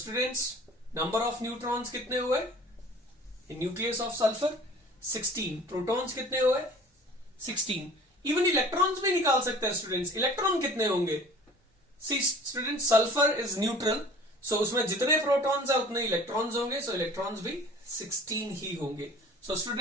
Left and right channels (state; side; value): normal; both; correlation 0.47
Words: number of neutrons कितने हुए in nucleus of sulfur? 16. Protons कितने हुए? 16. इवन इलेक्ट्रॉन्स भी निकाल सकते हैं स्टूडेंट्स. इलेक्ट्रॉन कितने होंगे? सी स्टूडेंट्स, सल्फर इज न्यूट्रल, सो उसमें जितने प्रोटॉन्स है उतने इलेक्ट्रॉन्स होंगे, सो इलेक्ट्रॉन्स भी 16 ही होंगे. सो